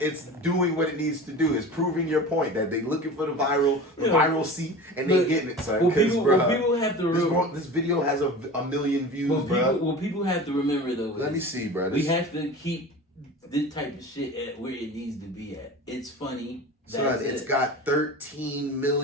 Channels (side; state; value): both; normal; correlation 0.34